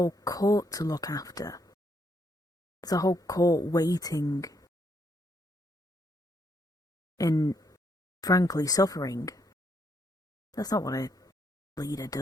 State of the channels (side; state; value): both; normal; correlation 0.74